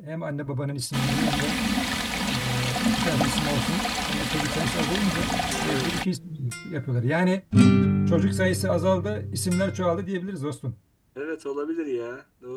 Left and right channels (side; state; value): both; identical; correlation 1.00